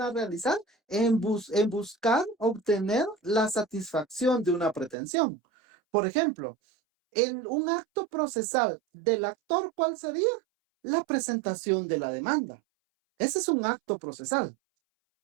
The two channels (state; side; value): drops out; left; at 5.0 s